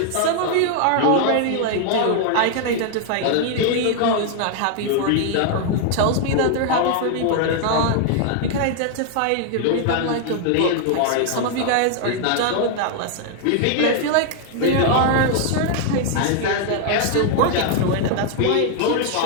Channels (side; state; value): both; different; correlation 0.00